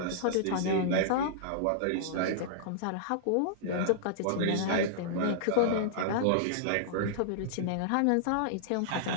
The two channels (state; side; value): different; both; correlation -0.02